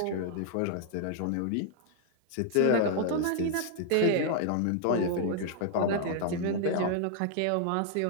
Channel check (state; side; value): different; both; correlation -0.01